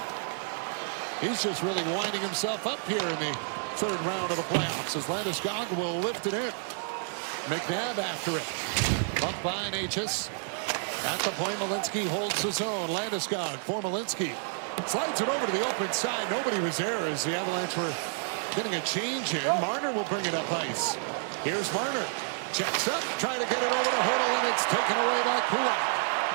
he's just really winding himself up here in the third round of the playoffs as Landeskog will lift it in. McNabb after it. Bumped by Natchez. At the point, Walensky holds his own. Landeskog for Walensky. Slides it over to the open side. Nobody was there as the Avalanche were getting a change in. Marner will bring it up ice. Here's Marner. Checks up, trying to get it over the hurdle, and it's taken away by Kulak.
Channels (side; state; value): left; silent; 58 dB below the other